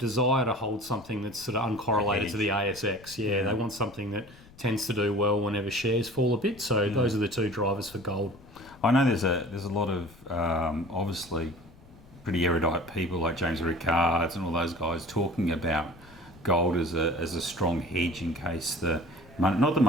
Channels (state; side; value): noise; left; rumble, 23 dB below the sound